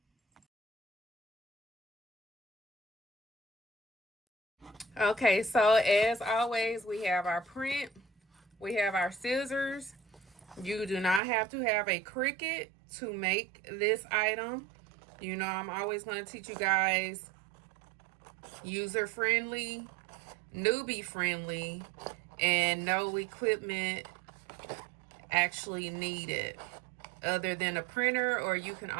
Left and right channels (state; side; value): drops out; left; at 11.2 s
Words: Okay, so as always, we have our print, we have our scissors. You do not have to have a Cricut to make this item. You know, I'm always going to teach you guys user-friendly, newbie-friendly, and no equipment actually needed other than a printer, or you can